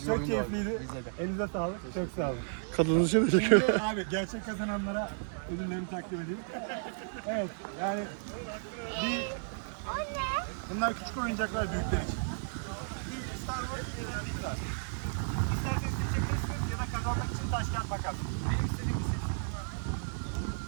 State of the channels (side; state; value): left; silent; 56 dB below the other